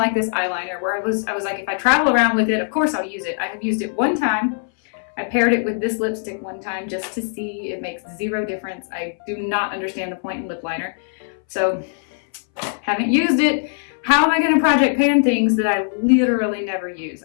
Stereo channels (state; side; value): silent; right; 62 dB below the other